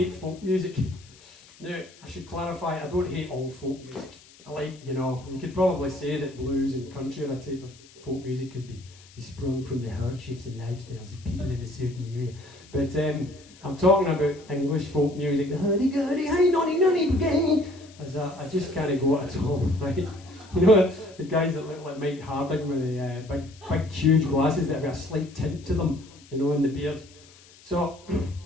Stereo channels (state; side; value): noise; left; hiss, 24 dB below the sound